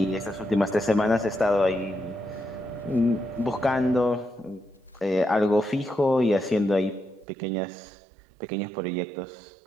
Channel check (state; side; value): drops out; left; at 7.2 s